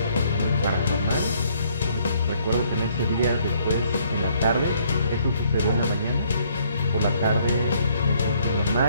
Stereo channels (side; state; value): both; inverted; correlation -0.66